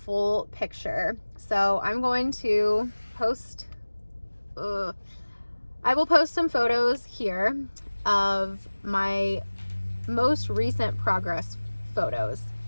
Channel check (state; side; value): inverted; both; correlation -1.00